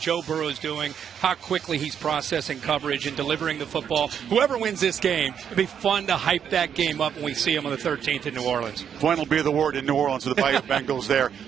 Burrow is doing, how quickly he's processing coverage and delivering the football. Whoever wins this game, it'll be fun to hype that game up when we see him on the 13th in New Orleans. Fun will be the word in New Orleans with the Bayou Bengals there,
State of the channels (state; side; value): quieter; left; 8.2 dB